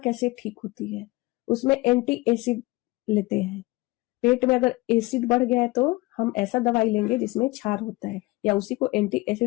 ठीक होती है? उसमें एंटी एसिड लेते हैं। पेट में अगर एसिड बढ़ गया है तो हम ऐसा दवाई लेंगे जिसमें क्षार होता है, या उसी को एंटी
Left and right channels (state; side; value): quieter; right; 21.7 dB